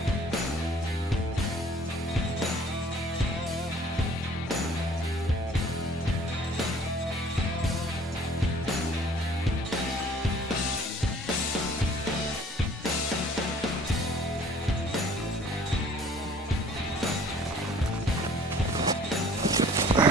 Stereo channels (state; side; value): normal; both; correlation 0.54